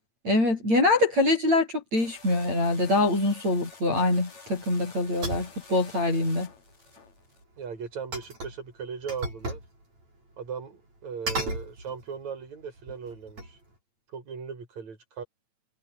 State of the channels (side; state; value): left; late; 8.9 ms